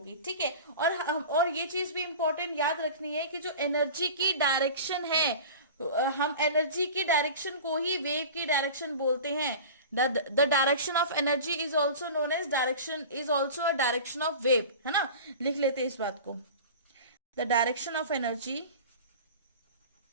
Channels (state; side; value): inverted; both; correlation -0.36